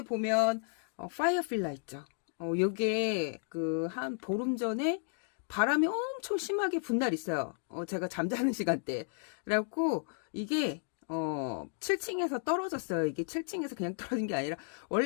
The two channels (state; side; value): silent; right; digital silence